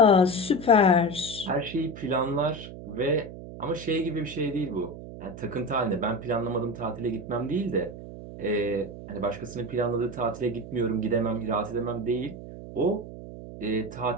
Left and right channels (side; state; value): right; noise; hum, 12 dB below the sound